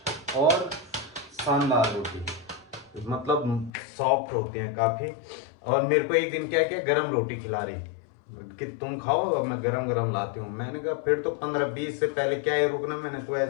और शानदार रोटी, मतलब सॉफ्ट होती है काफी। और मेरे को एक दिन क्या क्या गरम रोटी खिला रही कि तुम खाओ, अब मैं गरम गरम लाती हूँ। मैंने कहा फिर तो 15-20 से पहले क्या है रुकना, मैंने तो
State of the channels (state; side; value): drops out; right; at 3.7 s